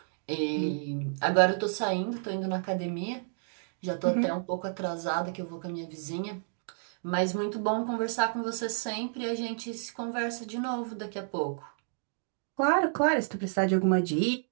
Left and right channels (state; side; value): silent; left; digital silence